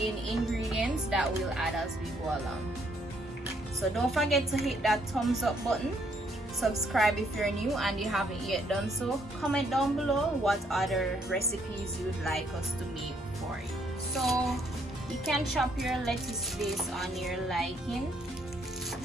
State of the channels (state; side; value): normal; both; correlation 0.70